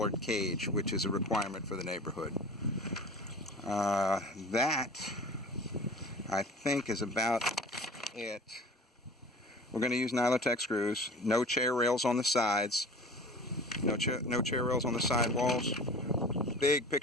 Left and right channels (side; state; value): both; normal; correlation 0.39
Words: cage, which is a requirement for the neighborhood. That I think is about it. We're going to use Nylotech screws. No chair rails on the sides. No chair rails on the side walls. Big